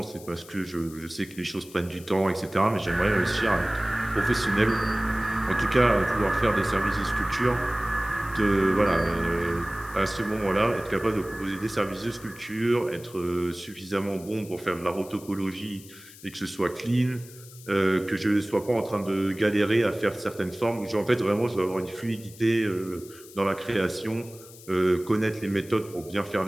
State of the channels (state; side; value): noise; left; hiss, 20 dB below the sound